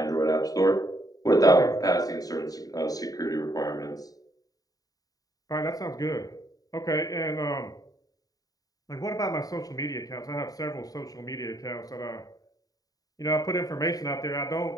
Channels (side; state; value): right; late; 0.18 ms